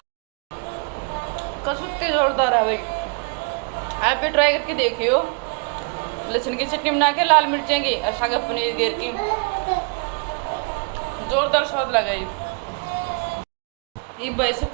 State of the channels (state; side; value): quieter; left; 37.5 dB